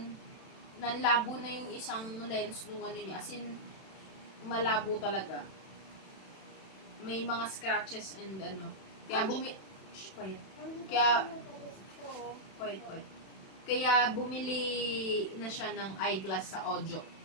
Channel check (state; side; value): late; right; 31 ms